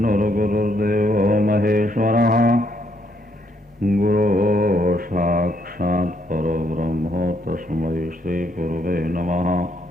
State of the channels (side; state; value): both; normal; correlation 0.72